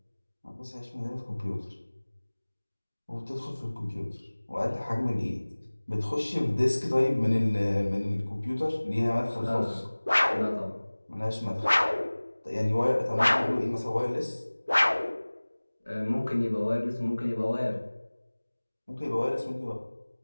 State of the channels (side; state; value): both; inverted; correlation -1.00